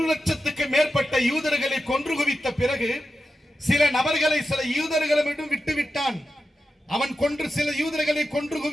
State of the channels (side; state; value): both; normal; correlation 0.90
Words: லட்சத்துக்கு மேற்பட்ட யூதர்களை கொன்று குவித்த பிறகு சில நபர்களை சில யூதர்களிடம் விட்டுவிட்டான். அவன் சில யூதர்களை கொன்று